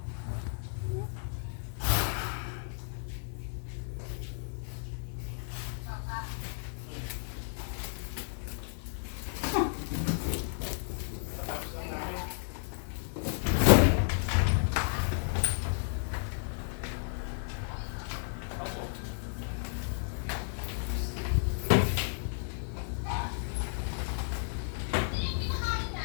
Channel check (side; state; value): right; silent; 56 dB below the other